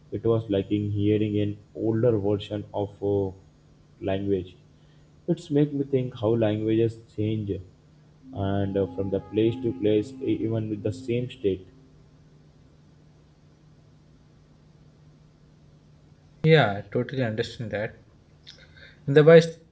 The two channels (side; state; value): both; identical; correlation 1.00